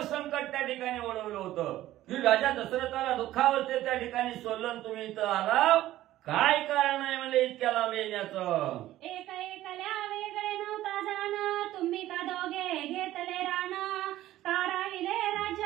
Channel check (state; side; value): quieter; left; 14.6 dB